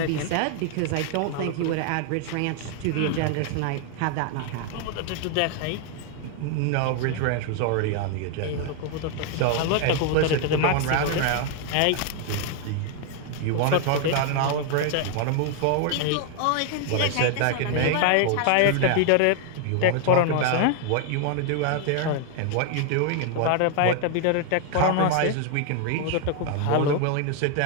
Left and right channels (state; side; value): different; both; correlation 0.00